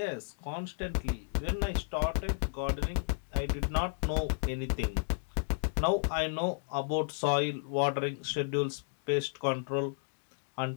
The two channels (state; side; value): silent; right; 56 dB below the other